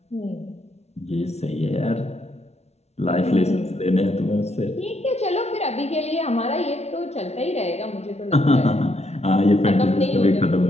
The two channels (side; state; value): right; late; 0.31 ms